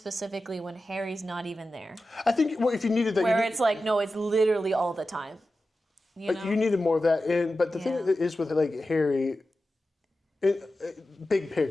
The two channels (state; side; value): normal; both; correlation 0.93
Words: when Harry's not even there. I think if you needed that, Where it's like, no, it's literally all the time. You know? You needed more of that. But the thing is with like Harry, big